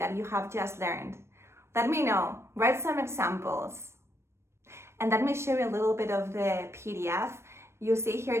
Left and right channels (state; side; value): late; left; 0.13 ms